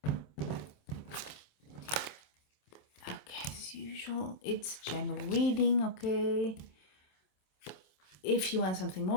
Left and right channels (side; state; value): right; late; 27 ms